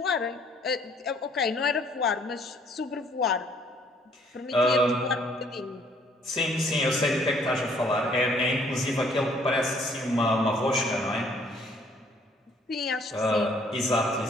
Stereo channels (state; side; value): normal; both; correlation 0.62